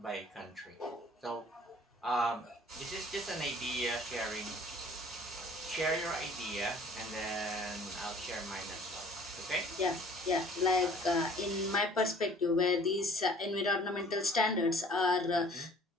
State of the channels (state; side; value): normal; both; correlation 0.51